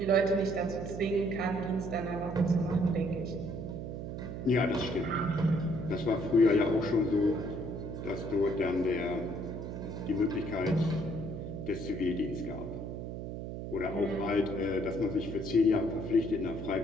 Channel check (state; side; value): noise; right; hum, 6 dB below the sound